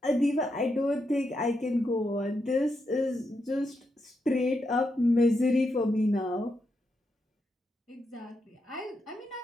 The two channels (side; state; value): both; normal; correlation 0.83